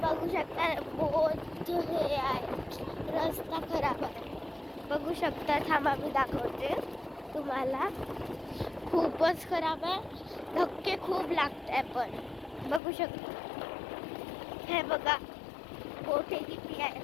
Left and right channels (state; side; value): drops out; right; at 12.8 s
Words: बघू शकता बहुत हे आहे, रस्ता खराब आहे. बघू शकता, थांबा मी दाखवते तुम्हाला. खूपच खराब आहे, धक्के खूप लागत आहे. पण बघू शकता, हे बघा मोठे किती